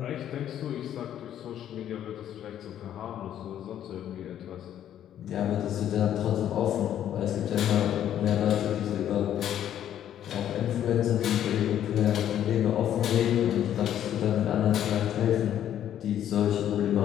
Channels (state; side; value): quieter; right; 10.7 dB